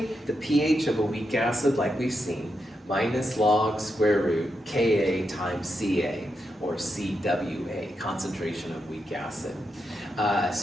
the pH of a weak acid, like we've seen, minus log square root Ka times Ca, or Cwa, concentration of weak acid.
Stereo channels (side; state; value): both; normal; correlation 0.85